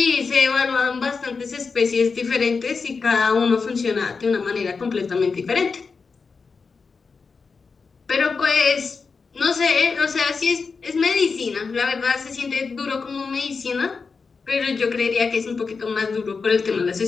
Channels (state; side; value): quieter; right; 4.9 dB